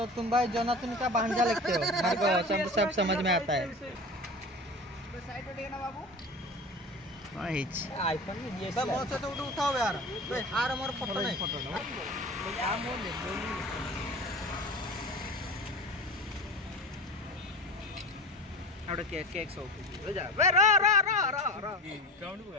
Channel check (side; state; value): both; normal; correlation 0.33